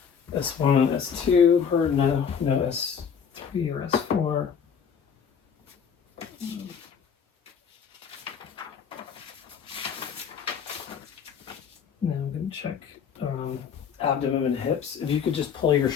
S1 and S2, or no S3 or S4. check abdomen and hips. If you could just pull your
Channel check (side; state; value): right; quieter; 7.1 dB